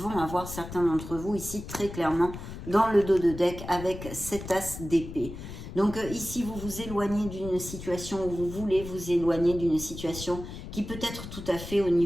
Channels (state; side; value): noise; left; rumble, 10 dB below the sound